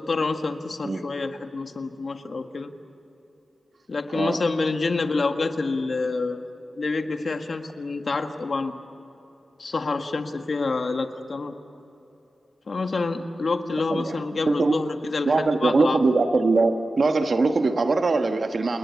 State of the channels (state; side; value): normal; both; correlation 0.91